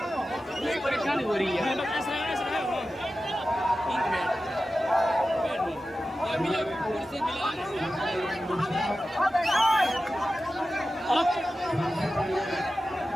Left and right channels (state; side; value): normal; both; correlation 0.93